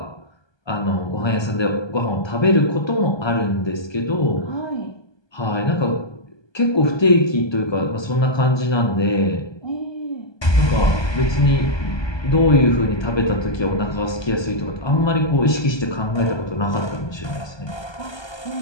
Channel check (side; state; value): right; late; 1.2 ms